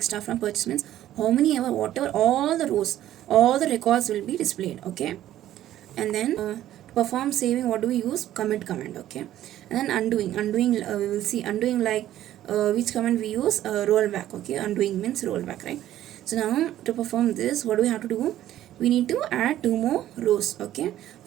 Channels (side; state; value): left; quieter; 12.9 dB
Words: star from purchase means how many ever, whatever, all the rows, all the records will be displayed. Okay, and then to perform saving, what do we use? Commit command. Okay, and then undoing we will see undoing, like which command we use? Rollback. Okay, undoing means rollback, right? So now to perform this, what do we have to do? We need to add 2 more rows. Okay,